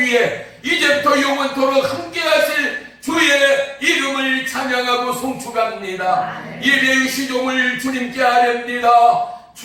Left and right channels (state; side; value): identical; both; correlation 1.00